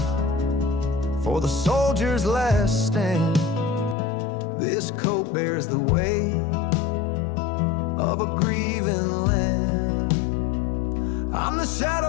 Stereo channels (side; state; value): right; drops out; at 4.0 s